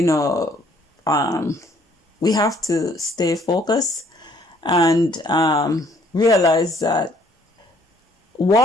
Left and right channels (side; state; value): both; normal; correlation 0.62